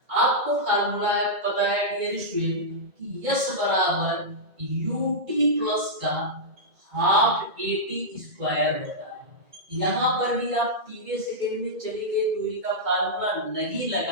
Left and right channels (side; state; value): left; late; 2.1 ms